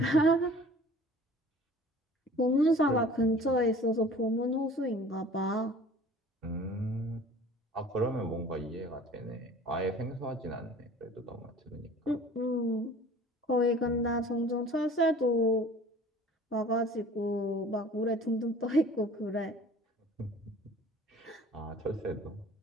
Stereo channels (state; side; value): normal; both; correlation 0.47